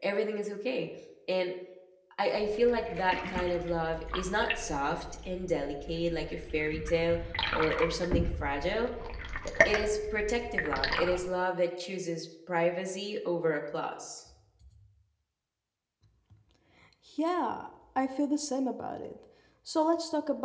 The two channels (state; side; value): identical; both; correlation 1.00